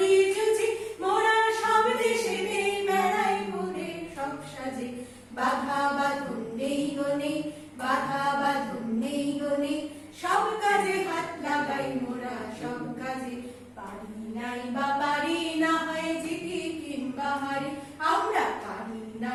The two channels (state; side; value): identical; both; correlation 1.00